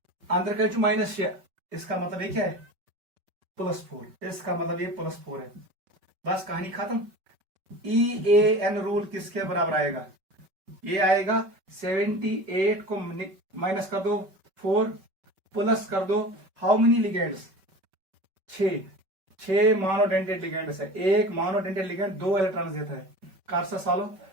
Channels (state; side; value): late; left; 5.2 ms